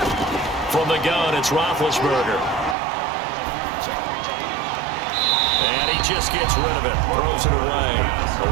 From the gun, it's Roethlisberger. And he just gets rid of it, throws it away. A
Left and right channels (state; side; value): drops out; left; at 2.8 s